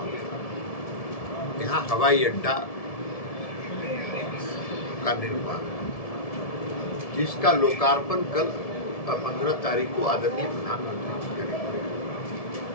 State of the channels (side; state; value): right; late; 1.7 ms